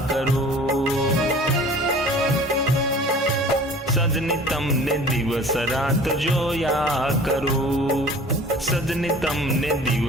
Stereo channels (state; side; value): normal; both; correlation 0.45